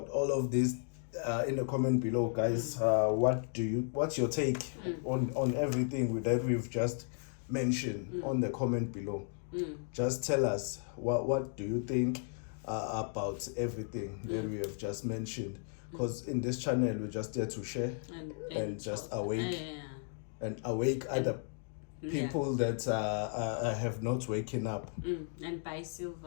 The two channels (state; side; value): silent; right; 55 dB below the other